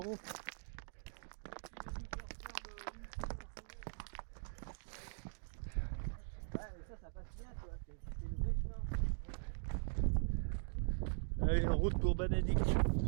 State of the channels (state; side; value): silent; left; digital silence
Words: Ouais, mais ça passe bien, tu vois. C'est le vrai chemin. Allez, en route pour Banadik.